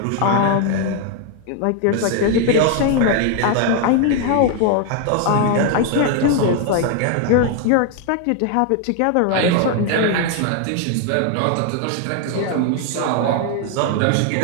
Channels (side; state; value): both; different; correlation 0.00